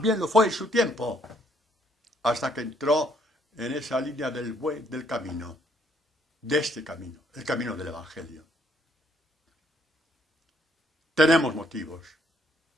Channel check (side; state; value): both; normal; correlation 0.68